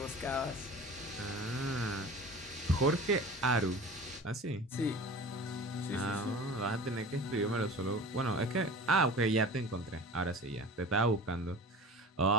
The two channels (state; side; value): normal; both; correlation 0.38